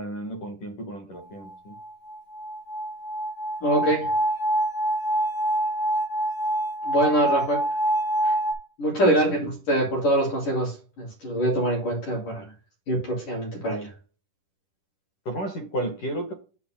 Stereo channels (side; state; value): right; late; 10 ms